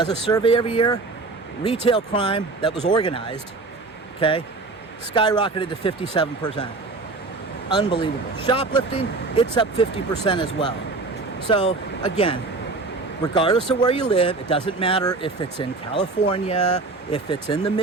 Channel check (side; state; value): left; quieter; 3.6 dB